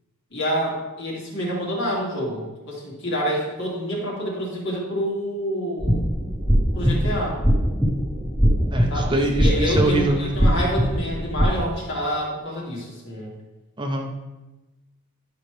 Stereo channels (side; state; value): both; normal; correlation 0.66